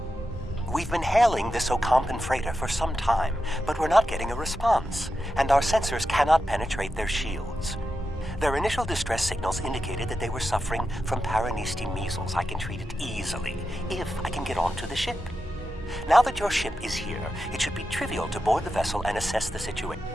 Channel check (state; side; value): normal; both; correlation 0.89